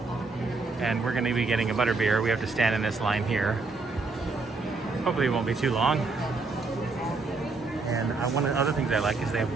And we're gonna be getting a Butterbeer. We have to stand in this line here. Hopefully it won't be too long. And one of the other things I like is they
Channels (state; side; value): quieter; left; 3.9 dB